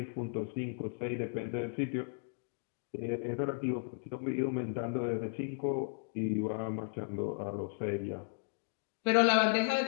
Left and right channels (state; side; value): silent; right; digital silence